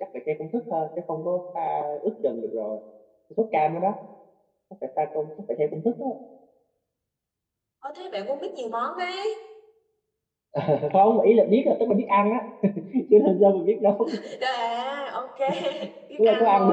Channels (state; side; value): identical; both; correlation 1.00